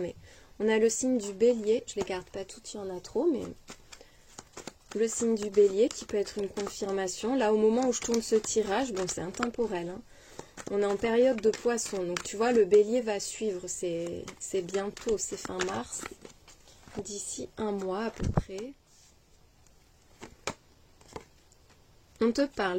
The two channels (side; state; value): both; identical; correlation 1.00